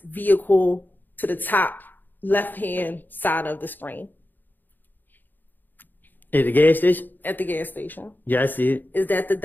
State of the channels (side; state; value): right; late; 0.089 ms